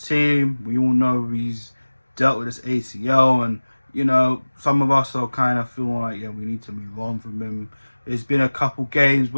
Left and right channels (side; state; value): both; inverted; correlation -1.00